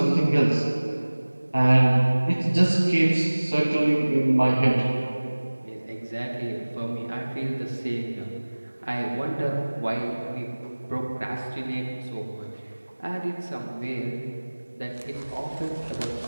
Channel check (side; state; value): both; inverted; correlation -1.00